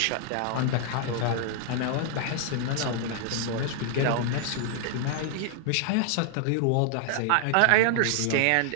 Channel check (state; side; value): different; both; correlation 0.00